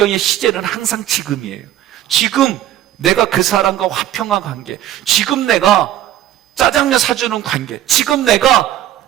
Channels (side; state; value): left; quieter; 12.6 dB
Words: 시제는 항상 지금이에요. 지금 내가 그 사람과 화평한 관계, 지금 내가 짜장면 사주는 관계, 지금 내가